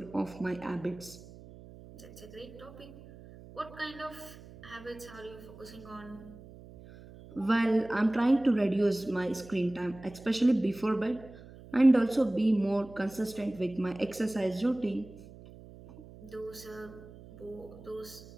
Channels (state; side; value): noise; right; hum, 18 dB below the sound